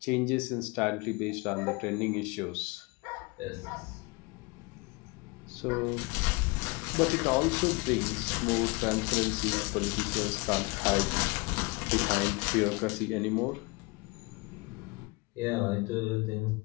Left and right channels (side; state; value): right; quieter; 26.6 dB